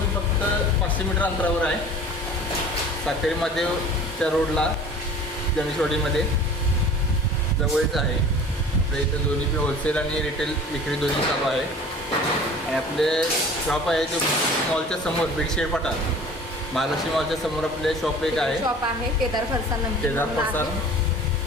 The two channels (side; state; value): both; normal; correlation 0.43